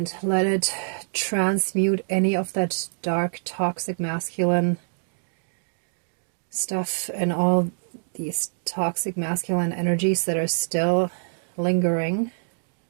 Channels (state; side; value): silent; left; digital silence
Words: let it transmute any of that dark, toxic masculine stuff and all these toxic masculine energies that are still lingering.